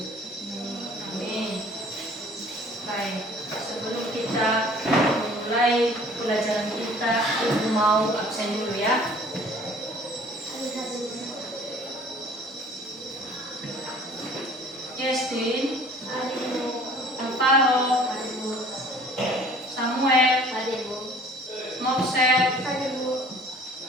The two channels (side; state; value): both; normal; correlation 0.51